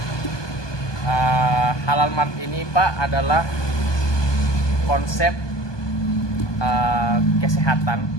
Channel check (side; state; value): right; late; 1.2 ms